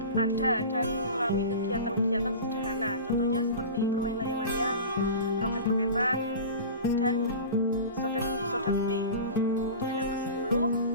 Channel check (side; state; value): both; inverted; correlation -0.33